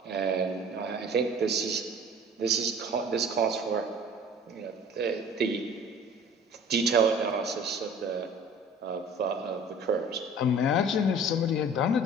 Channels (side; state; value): both; normal; correlation 0.46